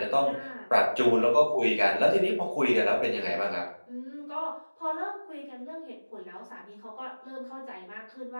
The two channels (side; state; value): both; inverted; correlation -1.00